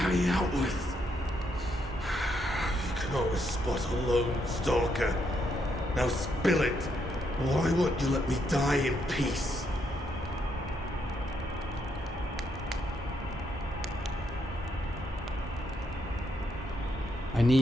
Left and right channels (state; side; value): normal; both; correlation 0.76